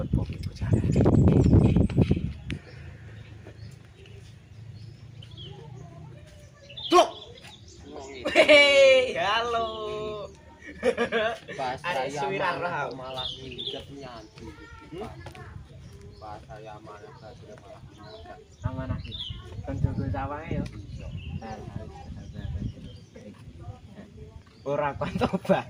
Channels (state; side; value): identical; both; correlation 1.00